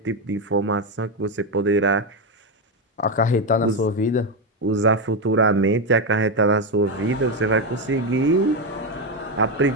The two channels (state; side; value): normal; both; correlation 0.09